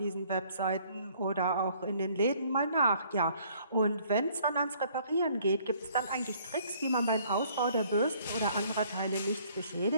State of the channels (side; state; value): both; inverted; correlation -0.61